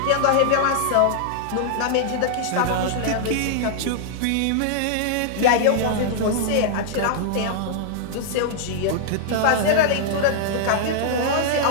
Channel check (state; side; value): different; both; correlation -0.01